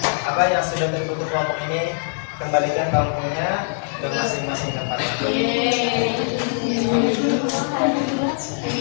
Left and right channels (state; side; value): silent; right; digital silence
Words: sudah tertutup kelompok ini, kembalikan bangkunya ke masing-masing tempat.